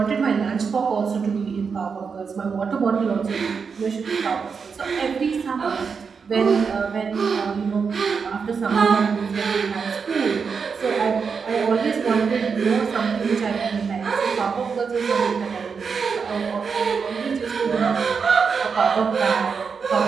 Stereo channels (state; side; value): quieter; left; 5.7 dB